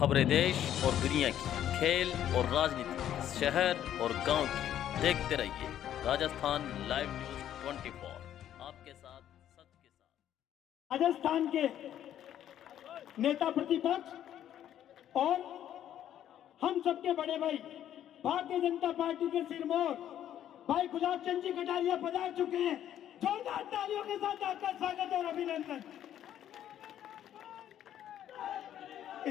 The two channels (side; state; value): right; quieter; 11.0 dB